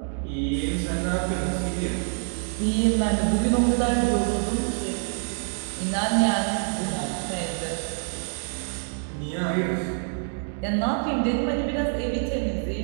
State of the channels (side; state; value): left; silent; 61 dB below the other